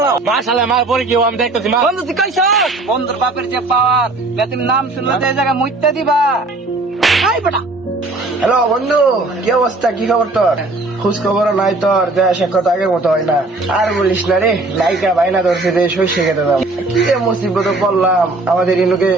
মাশাআল্লাহ মার পরে কি আমি দেখতেছি মা। বন্ধু তুই কইছ বন্ধুর বাপের যে পাওয়ার, তুমি নাম শুনলে তো এই জায়গায় মুইত্যা দিবা। এই বেটা হ্যালো বন্ধু, কি অবস্থা? কি খবর তোর? খোঁজ খবর নাই তোর, দেশে কথা আগের মতো হয় না। আর বলিস না রে, নায়িকা বাইনা ধরছে যে শস্য খেতে দাম। কি যে মুসিবত পড়লাম, আমাদের ইনুকে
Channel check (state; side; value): quieter; left; 3.1 dB